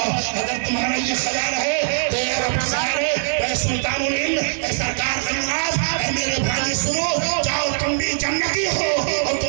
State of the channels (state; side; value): silent; left; 59 dB below the other